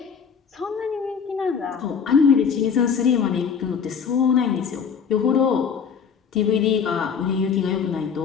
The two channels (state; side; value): quieter; right; 6.6 dB